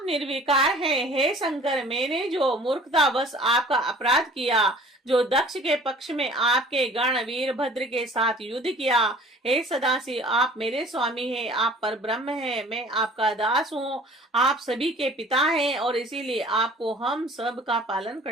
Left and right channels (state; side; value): normal; both; correlation 0.49